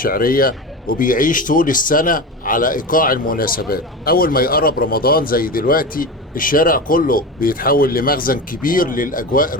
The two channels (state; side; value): normal; both; correlation 0.25